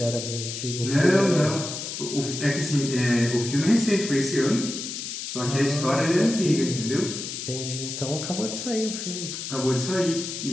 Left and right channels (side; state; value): left; noise; hiss, 6 dB below the sound